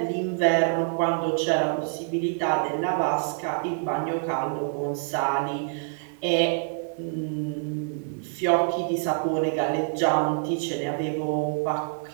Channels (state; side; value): silent; left; 61 dB below the other